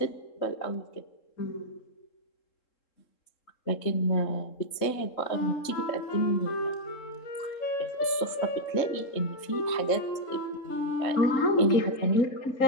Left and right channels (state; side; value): late; right; 3.7 ms